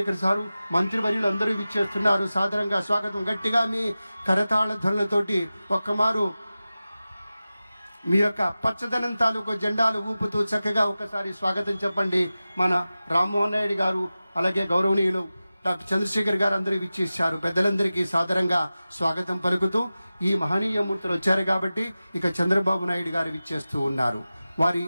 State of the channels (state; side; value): inverted; both; correlation -0.96